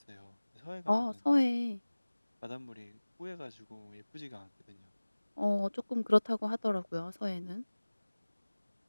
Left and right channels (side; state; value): both; inverted; correlation -1.00